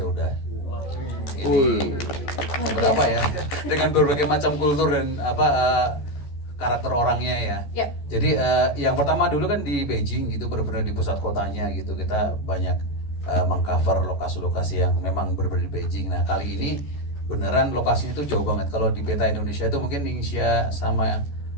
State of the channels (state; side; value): late; right; 14 ms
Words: udah. Ini berapa ya? Dengan berbagai macam kultur dan karakter orangnya ya. Jadi yang pertama dulu kan di Beijing gitu, benar-benar di pusat kotanya gitu. Kita banyak mengcover lokasi-lokasi yang memang berbeda di Beijing. Nah kali ini beneran lokasinya itu jauh banget. Kalau di peta Indonesia itu mungkin Ningxia sama